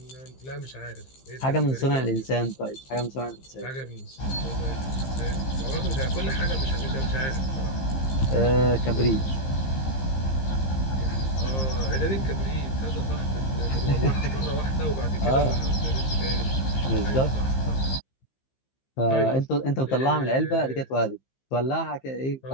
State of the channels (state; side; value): late; right; 15 ms